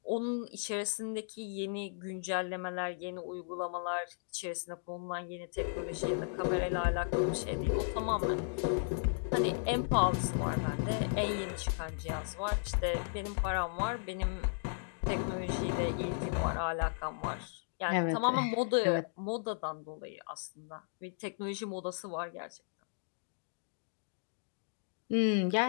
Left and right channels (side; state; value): right; silent; digital silence